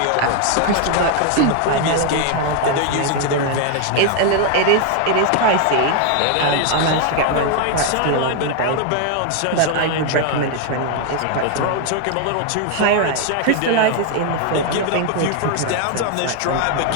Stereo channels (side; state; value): both; different; correlation 0.01